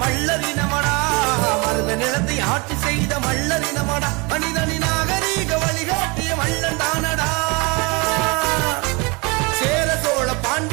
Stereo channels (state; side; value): quieter; left; 28.1 dB